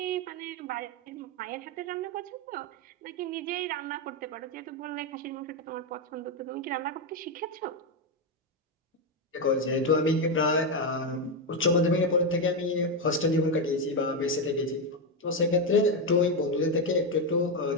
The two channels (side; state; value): both; normal; correlation 0.07